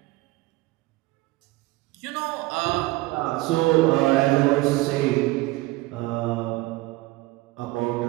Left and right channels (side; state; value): left; quieter; 20.3 dB